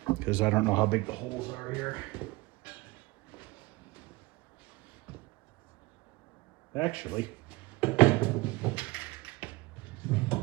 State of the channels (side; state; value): left; quieter; 22.1 dB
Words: because I don't know how big the holes are here. Actually,